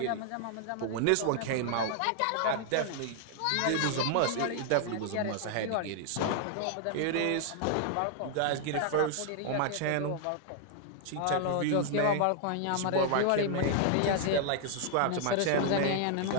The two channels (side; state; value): both; different; correlation 0.00